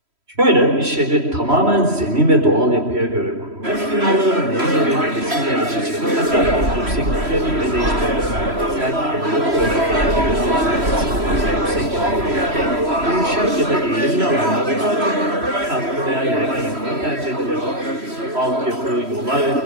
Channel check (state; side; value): late; left; 3.1 ms